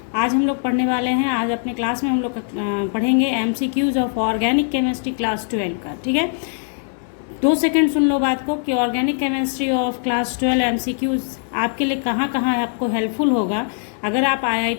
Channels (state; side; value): silent; right; 65 dB below the other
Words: आज हम लोग पढ़ने वाले हैं। आज अपने क्लास में हम लोग पढ़ेंगे MCQs of organic chemistry class 12 का। ठीक है, 2 सेकंड सुन लो बात को कि organic chemistry of class 12 MCQs आपके लिए कहाँ कहाँ आपको हेल्पफुल होगा। अगर आप